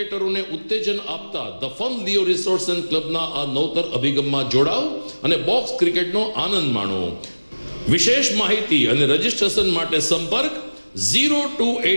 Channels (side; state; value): both; inverted; correlation -1.00